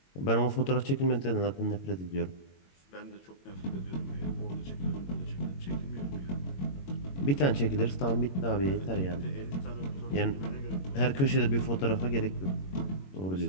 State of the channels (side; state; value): right; late; 21 ms